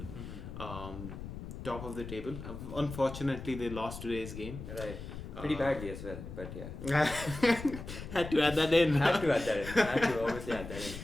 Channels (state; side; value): noise; left; rumble, 10 dB below the sound